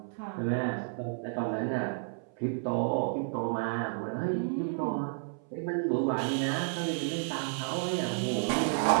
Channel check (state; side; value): silent; left; 57 dB below the other